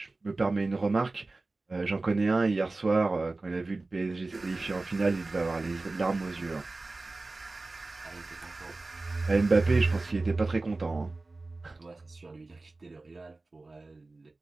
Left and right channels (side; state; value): left; quieter; 3.3 dB